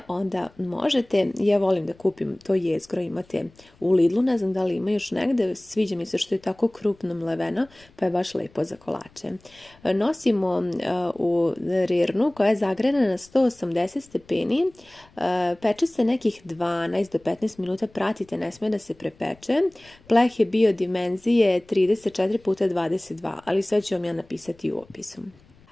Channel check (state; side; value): noise; left; rumble, 29 dB below the sound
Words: onda možete. Ja volim da kupim to jezgro, imate u Lidlu, ne znam da li ima još negde, sviđa mi se što je tako krupno mleveno, pa je baš lepo za kolače. Nosimo u rirnu koja je zagrejana na 180 stepeni, peče se nekih 12 do 15 minuta, pratite, ne smije da se prepeče. Pleh je bio dimenzije 34x22, ali sve ću vam ja napisati u opisu.